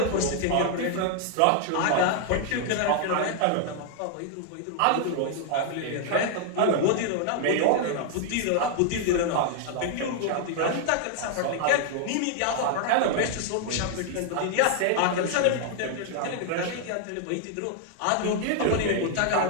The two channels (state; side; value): different; both; correlation 0.00